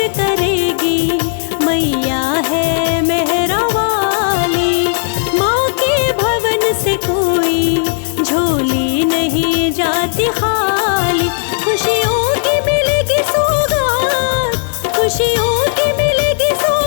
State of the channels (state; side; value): silent; right; 70 dB below the other